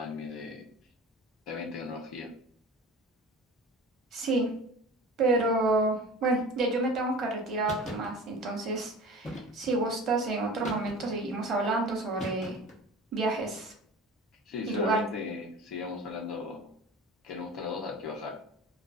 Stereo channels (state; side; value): normal; both; correlation 0.38